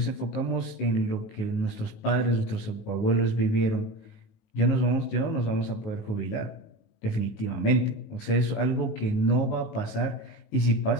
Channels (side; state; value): right; late; 19 ms